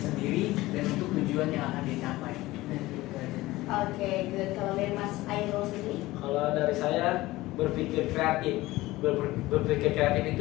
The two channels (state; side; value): quieter; right; 18.4 dB